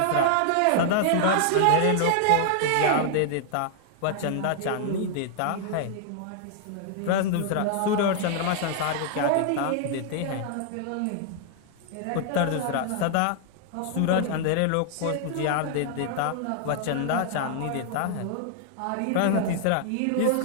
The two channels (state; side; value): different; both; correlation -0.01